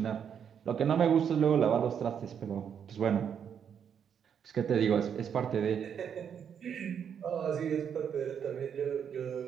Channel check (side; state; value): left; quieter; 7.9 dB